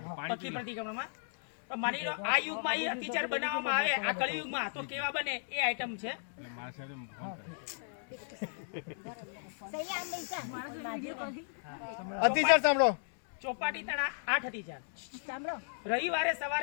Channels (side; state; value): right; silent; digital silence